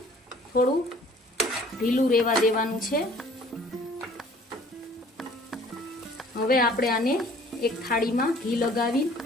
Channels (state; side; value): normal; both; correlation 0.53